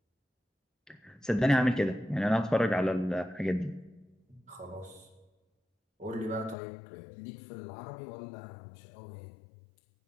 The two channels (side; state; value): right; drops out; at 6.6 s